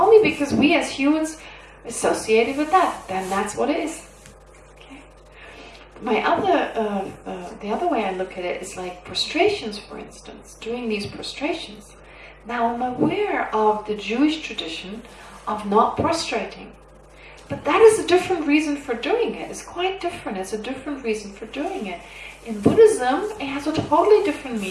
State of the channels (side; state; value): both; identical; correlation 1.00